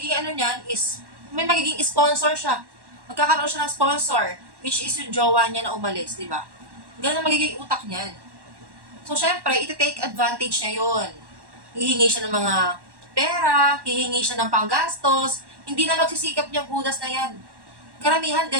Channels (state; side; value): late; left; 1.1 ms